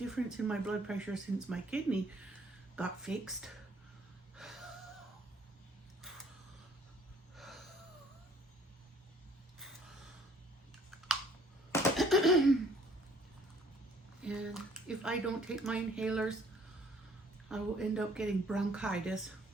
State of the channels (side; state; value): both; normal; correlation 0.59